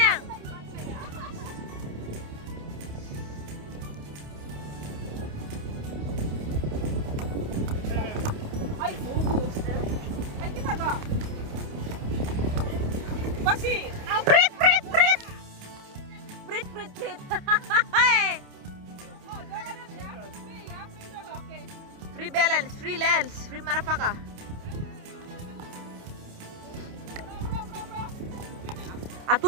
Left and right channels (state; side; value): late; left; 28 ms